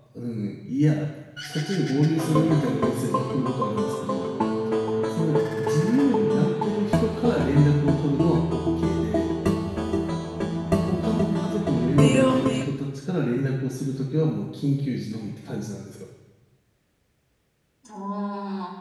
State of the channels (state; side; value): identical; both; correlation 1.00